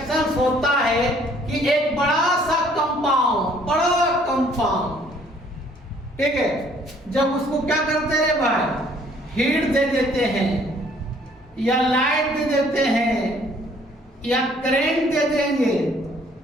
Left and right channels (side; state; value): both; normal; correlation 0.60